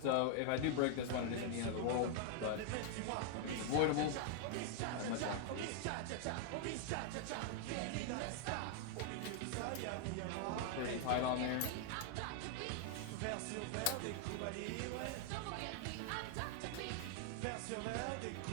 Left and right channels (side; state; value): both; different; correlation 0.00